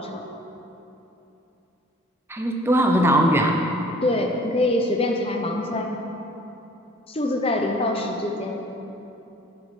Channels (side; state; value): both; normal; correlation 0.53